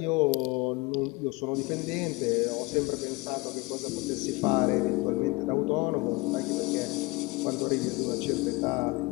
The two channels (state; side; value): quieter; right; 24.4 dB